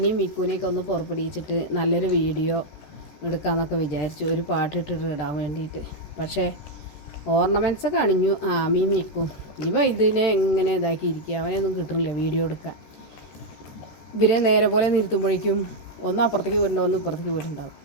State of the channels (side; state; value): right; late; 13 ms